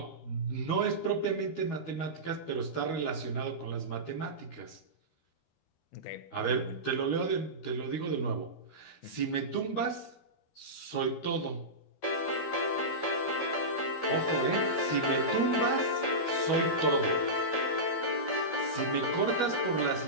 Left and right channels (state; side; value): late; right; 13 ms